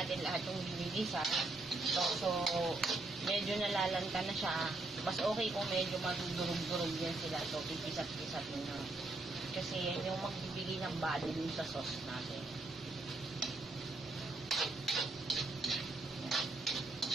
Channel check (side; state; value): left; quieter; 3.1 dB